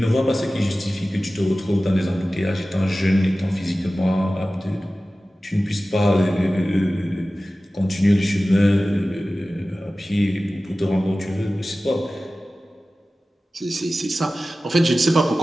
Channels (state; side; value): normal; both; correlation 0.96